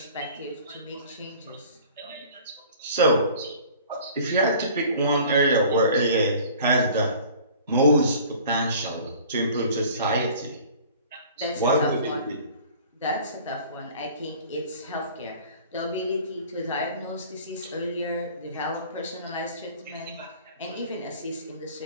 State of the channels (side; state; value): both; inverted; correlation -0.47